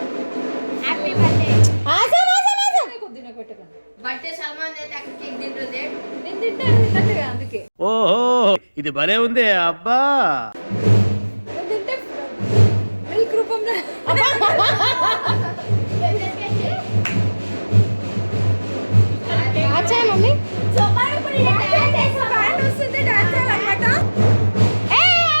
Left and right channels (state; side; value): inverted; both; correlation -1.00